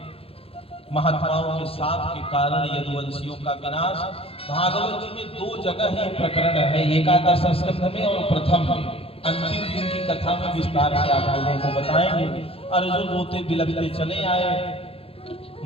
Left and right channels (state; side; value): late; right; 0.27 ms